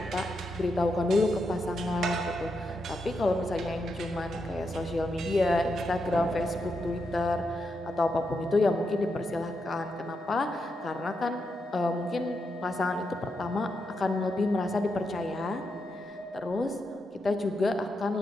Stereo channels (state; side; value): normal; both; correlation 0.84